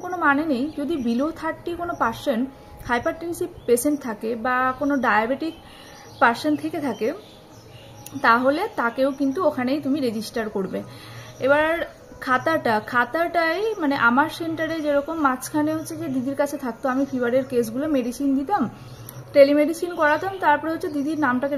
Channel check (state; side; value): identical; both; correlation 1.00